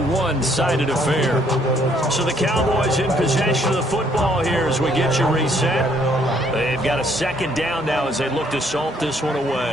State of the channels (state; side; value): normal; both; correlation 0.66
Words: one-sided affair. So the Cowboys in possession of the football here as we get you reset. They've got a 2nd down now as they look to salt this one